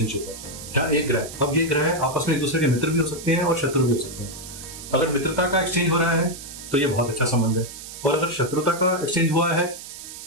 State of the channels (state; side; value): noise; right; hiss, 12 dB below the sound